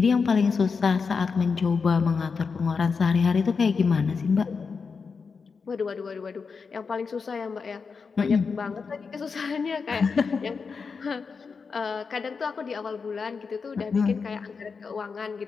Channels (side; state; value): right; quieter; 5.2 dB